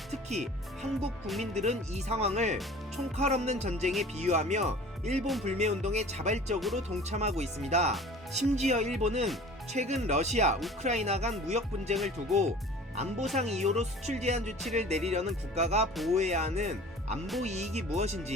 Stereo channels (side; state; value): both; normal; correlation 0.44